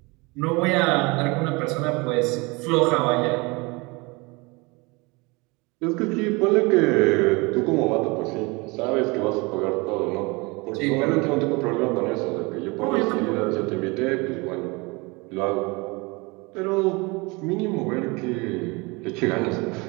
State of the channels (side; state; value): left; quieter; 26.4 dB